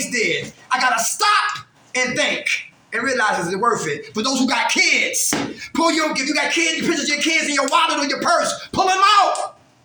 did. I gotta stop and think and realize is it worth it. For those who got kids, if you got kids, pictures of your kids in your wallet or your purse, pull them out.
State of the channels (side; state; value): both; identical; correlation 1.00